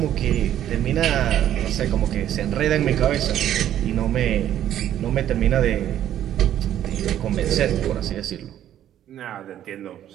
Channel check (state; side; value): quieter; left; 11.3 dB